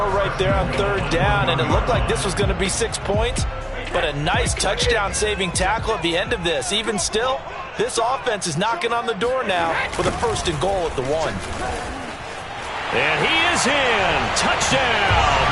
right there on 3rd down, and it looked like this was going to be 6 points, but a nice touchdown-saving tackle at the end of this. Even still, this offense is knocking on the door now with a 1st and goal at the 1. And he is in. Touchdown,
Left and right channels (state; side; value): identical; both; correlation 1.00